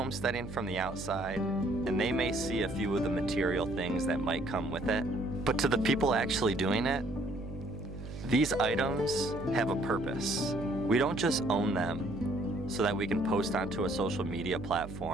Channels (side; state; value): right; noise; hum, 10 dB below the sound